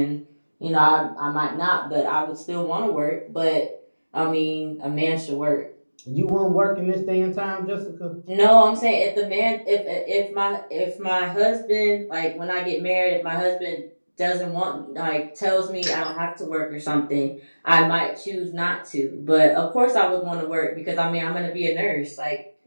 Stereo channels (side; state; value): both; inverted; correlation -1.00